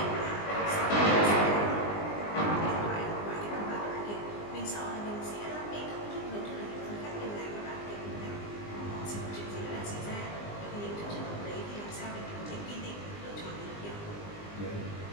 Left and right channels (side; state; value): right; late; 20 ms